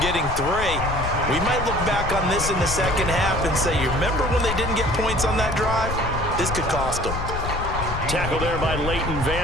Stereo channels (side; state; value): left; noise; rumble, 5 dB below the sound